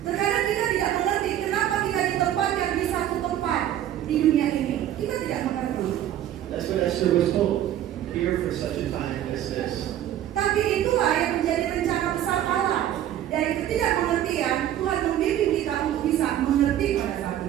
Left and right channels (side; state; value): left; quieter; 11.7 dB